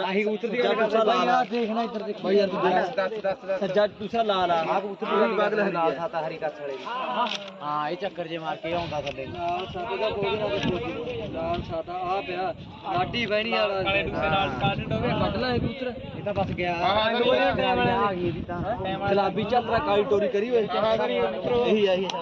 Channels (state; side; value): identical; both; correlation 1.00